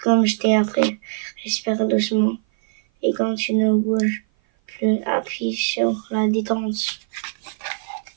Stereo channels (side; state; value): left; silent; 56 dB below the other